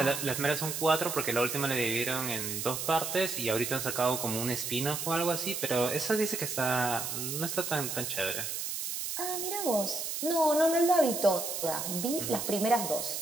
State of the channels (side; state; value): right; noise; hiss, 4 dB below the sound